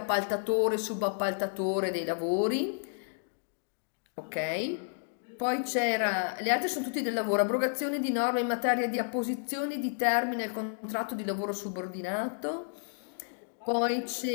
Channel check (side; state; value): right; silent; digital silence